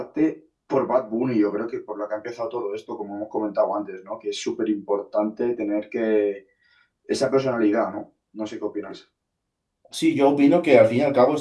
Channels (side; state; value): both; identical; correlation 1.00